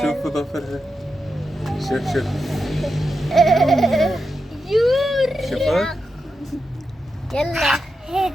شوفوا ظفرها شوف يور شوفت؟ يلا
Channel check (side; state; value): both; normal; correlation 0.87